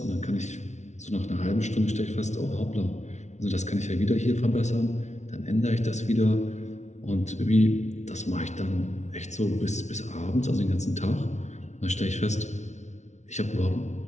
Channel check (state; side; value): late; right; 0.33 ms